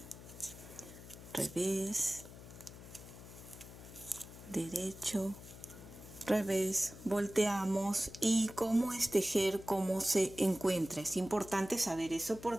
Revés, derecho, revés, volteamos. Y cómo es tejer, cómo se encuentra. Es importante saber eso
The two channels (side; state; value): left; noise; hum, 15 dB below the sound